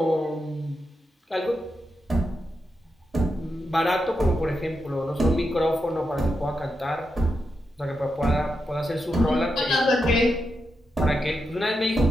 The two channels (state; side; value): normal; both; correlation 0.86